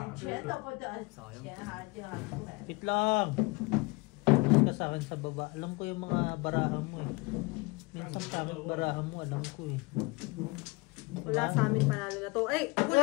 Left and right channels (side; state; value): right; quieter; 26.1 dB